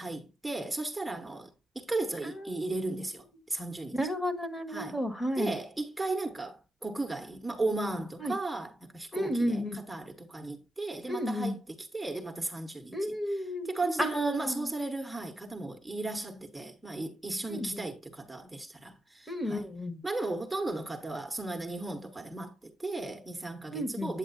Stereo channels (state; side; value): normal; both; correlation 0.88